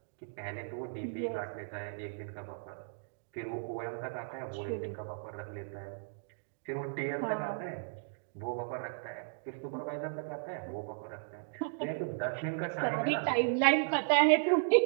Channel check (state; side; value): silent; left; digital silence